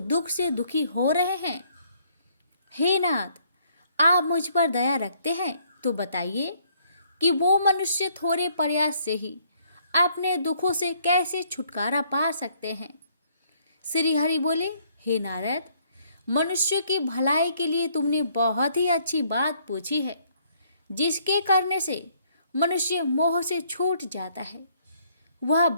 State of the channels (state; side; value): inverted; both; correlation -0.66